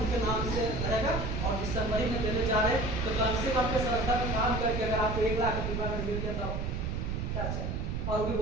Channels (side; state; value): right; noise; rumble, 2 dB below the sound